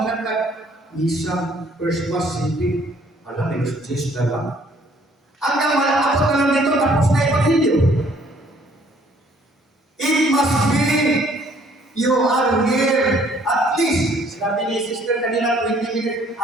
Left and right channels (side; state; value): both; normal; correlation 0.61